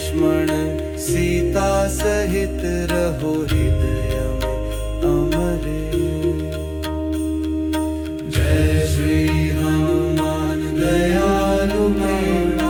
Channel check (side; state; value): both; identical; correlation 1.00